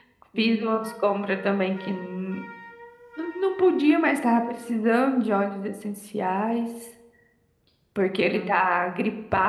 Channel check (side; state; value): both; identical; correlation 1.00